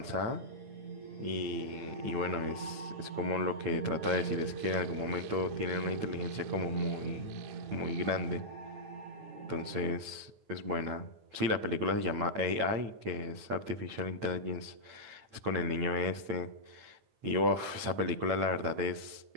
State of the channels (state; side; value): late; left; 9.0 ms